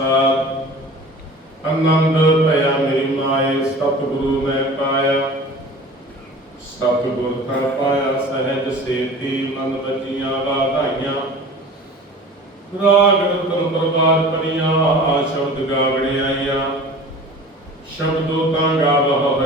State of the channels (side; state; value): both; normal; correlation 0.40